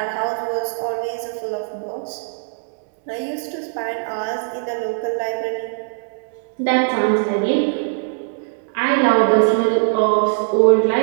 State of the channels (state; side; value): silent; left; digital silence